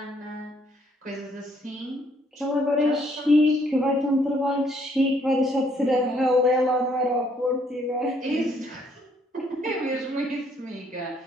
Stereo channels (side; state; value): both; normal; correlation 0.67